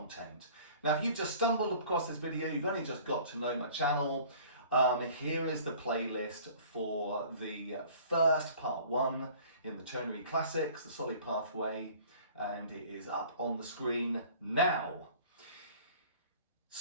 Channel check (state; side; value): inverted; both; correlation -0.49